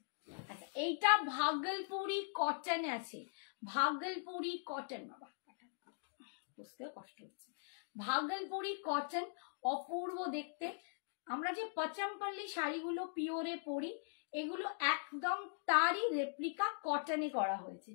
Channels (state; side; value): silent; right; digital silence